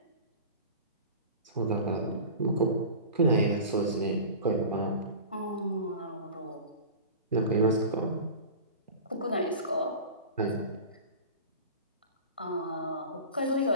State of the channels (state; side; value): inverted; both; correlation -0.35